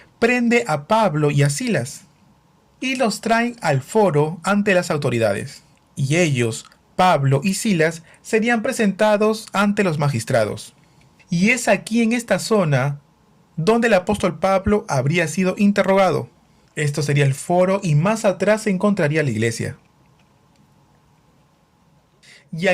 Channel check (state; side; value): identical; both; correlation 1.00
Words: prende a Pablo y a Silas y los traen al foro ante las autoridades. Y ellos, Pablo y Silas, serían presentados ante los magistrados. Y es aquí en esta zona donde el apóstol Pablo habría sido interrogado. Esto sería el foro y más atrás se encontraría la iglesia. Y